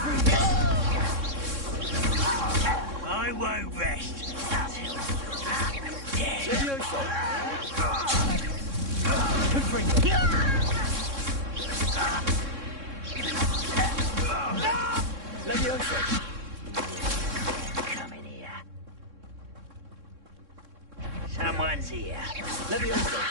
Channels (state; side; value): late; left; 3.6 ms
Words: I won't rest until you're dead. Come in here. Someone's here.